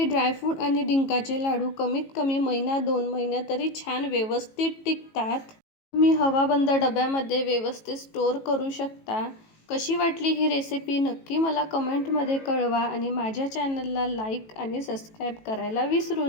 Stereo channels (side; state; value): right; late; 18 ms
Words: ड्रायफ्रूट आणि डिंकाचे लाडू कमीत कमी महिना 2 महिने तरी छान व्यवस्थित टिकतात. तुम्ही हवाबंद डब्यामध्ये व्यवस्थित स्टोअर करू शकता. कशी वाटली ही रेसिपी नक्की मला कमेंटमध्ये कळवा आणि माझ्या चॅनलला लाईक आणि सबस्क्राईब करायला विसरू